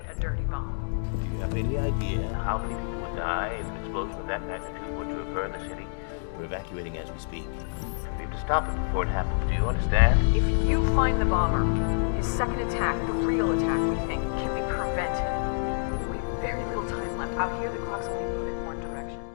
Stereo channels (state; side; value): silent; right; digital silence